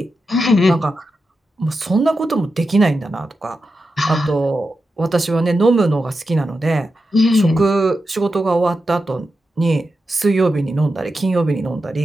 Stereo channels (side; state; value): both; normal; correlation 0.89